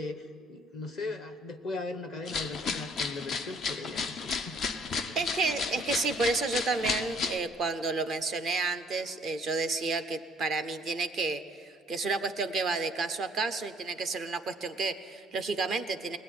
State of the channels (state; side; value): normal; both; correlation 0.61